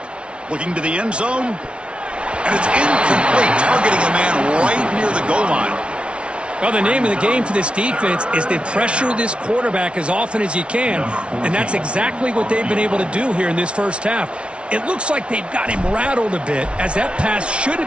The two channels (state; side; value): late; left; 0.059 ms